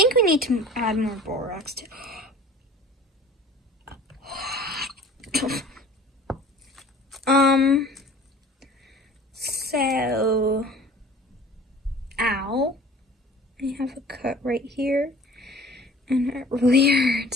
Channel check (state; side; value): normal; both; correlation 0.46